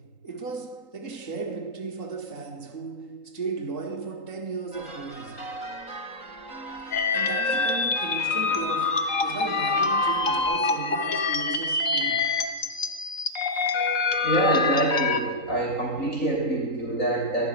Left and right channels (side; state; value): right; late; 3.8 ms